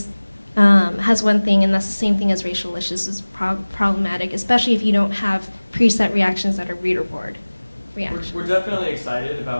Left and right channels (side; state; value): both; inverted; correlation -1.00